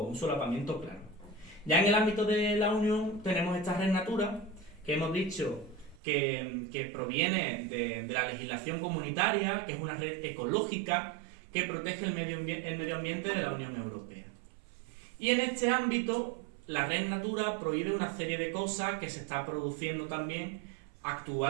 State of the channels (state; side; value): drops out; left; at 6.0 s